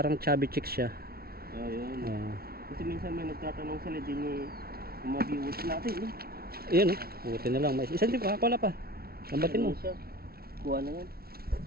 chubby chicks siya. Ayun. Oh. Kasi minsan may nagtatanong sila din eh, yung mga viewers natin eh. Ayan oh, buti na lang. May isang tip, wala pa. Lambatin mo. Ano siya? Kuha na yan.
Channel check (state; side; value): late; left; 0.44 ms